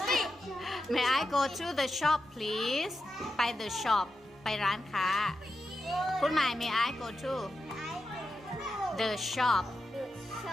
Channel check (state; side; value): normal; both; correlation 0.89